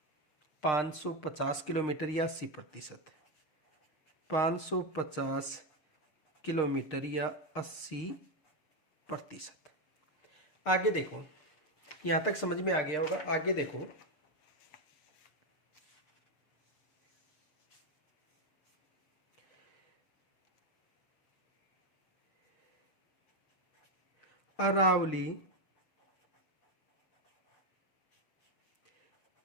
550 किलोमीटर या 80%। 550 किलोमीटर या 80%। आगे देखो, यहां तक समझ में आ गया होगा। आगे देखो, अरावली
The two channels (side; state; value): right; late; 6.5 ms